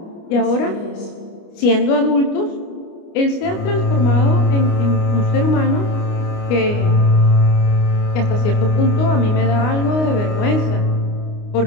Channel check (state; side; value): late; right; 29 ms